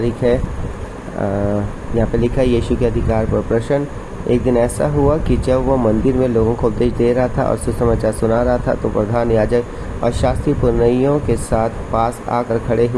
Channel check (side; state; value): both; identical; correlation 1.00